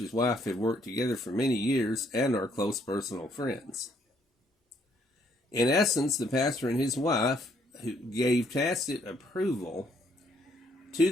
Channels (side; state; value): both; normal; correlation 0.69